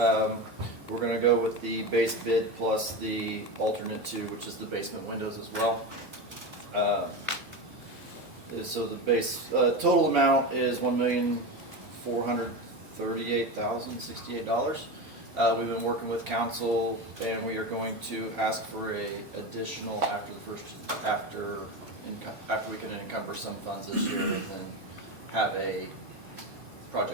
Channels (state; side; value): late; left; 2.5 ms